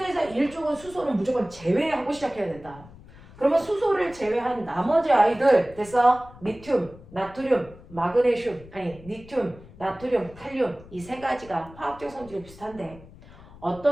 1쪽은 수소는 무조건 제외하고 시작해야 된다. 그러면 수소를 제외한 나머지 아이들 됐어? 리튬, 나트륨, 마그네슘, 아니 리튬, 나트륨, 칼륨 이 3가지가 화학적 성질이 비슷한데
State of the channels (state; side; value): noise; left; rumble, 20 dB below the sound